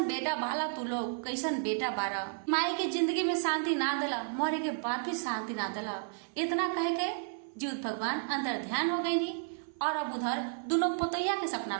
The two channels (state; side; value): silent; left; 56 dB below the other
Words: बेटा बाला तू लोग, कैसन बेटा बारा, माई के जिंदगी में शांति ना दिला, मरे के बाद भी शांति ना दिला। इतना कह के जिउत भगवान अंदर ध्यान हो गई नी और अब उधर दोनों पतोहिया के सपना